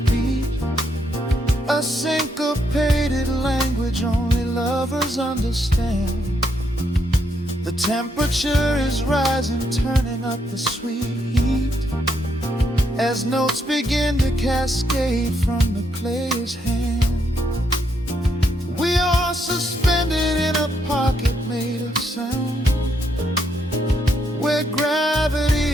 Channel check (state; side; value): normal; both; correlation 0.76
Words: a syncopated language only lovers understand. The temperature is rising, turning up the sweet heat, as notes begin to cascade from the player's hand. We are suspended in a pocket made of sound, where